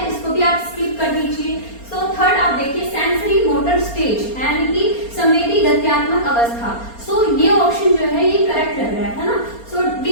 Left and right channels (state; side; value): late; right; 4.3 ms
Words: इसको भी आप स्किप कर दीजिए। थर्ड आप देखिए सेंसरी मोटर स्टेज, यानी कि संवेदी गत्यात्मक अवस्था। ये ऑप्शन जो है ये करेक्ट लग रहा है ना। डी